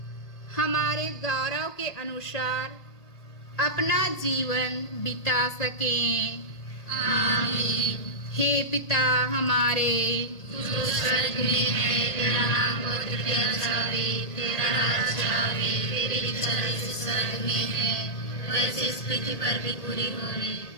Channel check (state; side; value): late; right; 1.8 ms